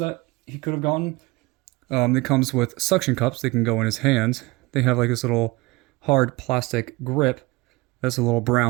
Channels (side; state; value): left; quieter; 22.4 dB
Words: he could have gotten. It comes with suction cups. They can go in his hands. They have like this little hard plastic grip that's a little